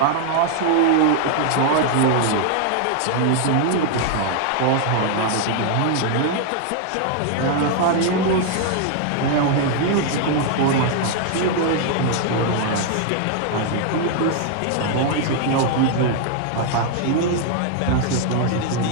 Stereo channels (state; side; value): different; both; correlation 0.00